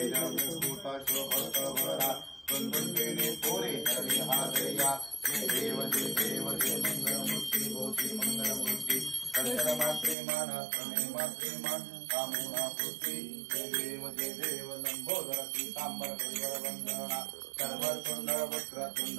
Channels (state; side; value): drops out; left; at 10.2 s